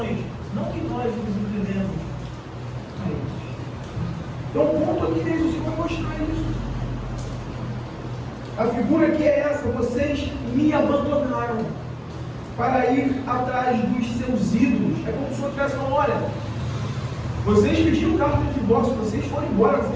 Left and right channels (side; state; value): both; identical; correlation 1.00